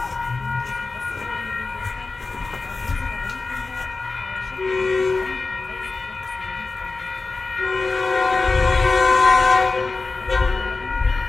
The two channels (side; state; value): right; quieter; 3.8 dB